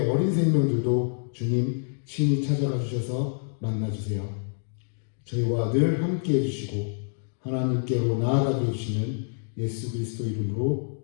어린 생명들도 주님 친히 찾아가 주셔서 만나주세요. 저희와 늘 함께 해주시고 하나님께로 나아가게 해주시는 예수 그리스도 이름으로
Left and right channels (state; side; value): silent; right; digital silence